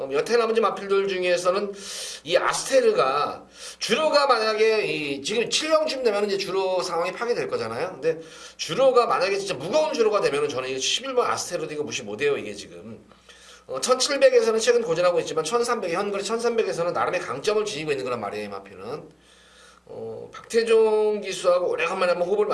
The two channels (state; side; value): identical; both; correlation 1.00